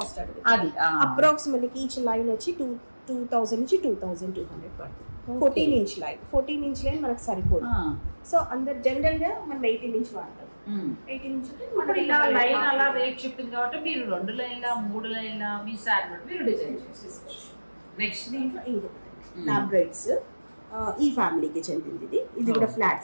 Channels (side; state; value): both; inverted; correlation -1.00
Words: అది అప్రాక్స్ మనకి ఈచ్ లైన్ వచ్చి 2000 నుంచి 2200 పడుతుంది. 14 ఇంచ్ లైన్ మనకు సరిపోదు. సో అందరు జనరల్ గా మనం 18 ఇంచ్ వాడతాం. 18 ఇంచ్ ఇలా లైన్ అలా రేట్ చెప్పింది కాబట్టి మీరు 2 లైన్ల 3 లైన్ల మీ సారీ మీరు డిజైన్ చేసుకోవచ్చు. నెక్స్ట్ దీంట్లో ఇంకొకటి లాబ్రైడ్స్. ఈ ఫ్యామిలీకి చెందింది. ఇది కూడా